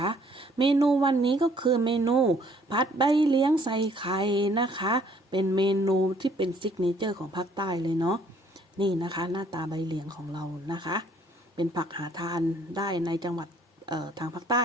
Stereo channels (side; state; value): both; normal; correlation 0.62